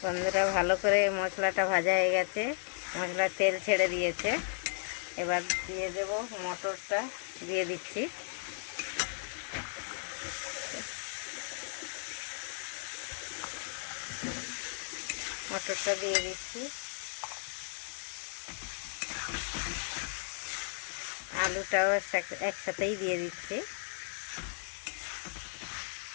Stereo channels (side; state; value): right; silent; 54 dB below the other